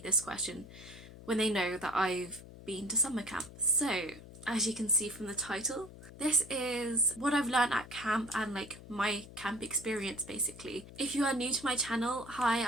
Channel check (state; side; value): noise; left; hum, 17 dB below the sound